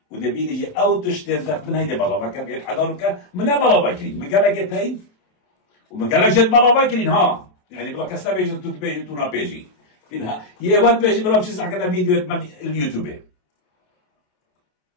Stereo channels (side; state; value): right; late; 28 ms